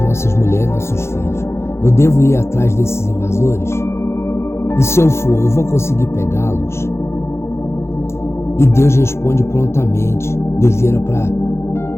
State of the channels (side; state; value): right; late; 0.13 ms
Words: nossas mulheres, nossos filhos. Eu devo ir atrás desses invasores? E se eu for, eu vou conseguir pegá-los? E Deus responde prontamente. Deus vira para